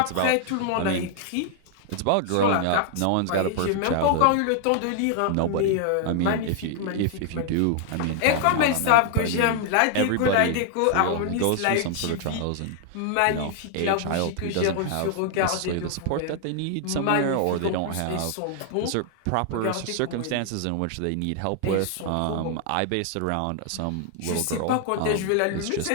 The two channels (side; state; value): both; different; correlation 0.00